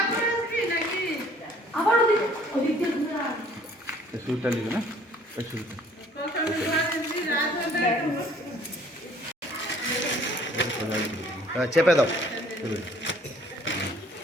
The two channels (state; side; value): normal; both; correlation 0.57